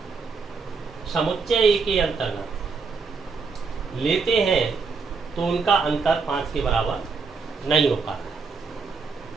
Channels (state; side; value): quieter; left; 4.9 dB